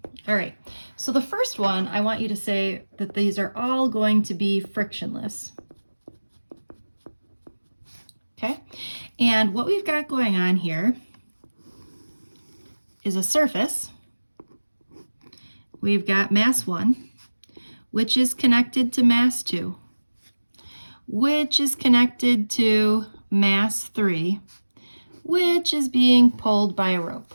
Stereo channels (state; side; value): inverted; both; correlation -1.00